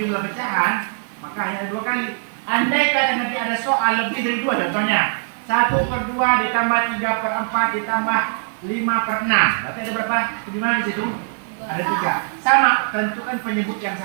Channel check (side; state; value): left; silent; 58 dB below the other